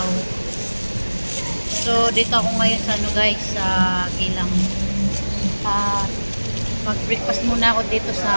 So dito ako ngayon sa ano guys, sa Gilang. Mag-breakfast muna ako dito sa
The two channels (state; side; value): inverted; both; correlation -1.00